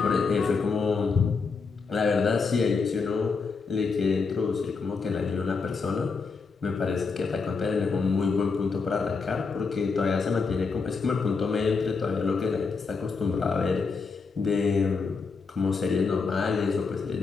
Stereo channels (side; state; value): right; quieter; 4.8 dB